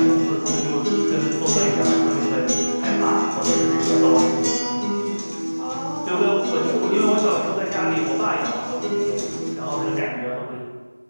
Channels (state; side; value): inverted; both; correlation -1.00